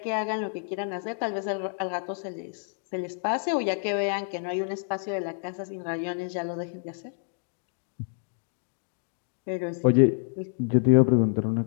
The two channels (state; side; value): silent; right; digital silence